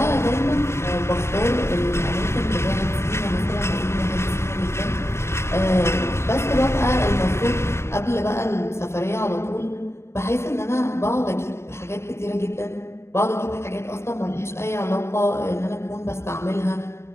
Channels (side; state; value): right; late; 0.13 ms